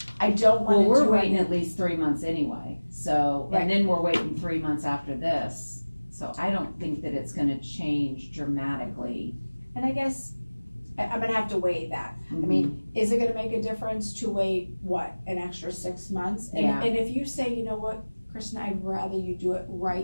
I don't Well, wanna we're do waiting any, at least 3 months anyway, so, Right. and then we're waiting 3 months after this. So I don't think that it's gonna change dramatically. and I guess, I'm gonna have to weigh that. I mean, is it gonna make a difference to wait, what, an extra 6 months? Yeah. And if you say, you know what, Kristen, I'd rather you do it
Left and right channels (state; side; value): inverted; both; correlation -1.00